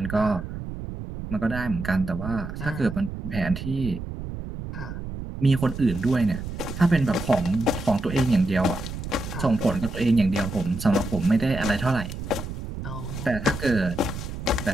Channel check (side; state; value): right; noise; rumble, 8 dB below the sound